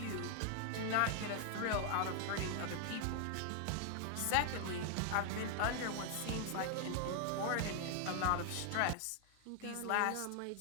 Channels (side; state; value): both; different; correlation 0.00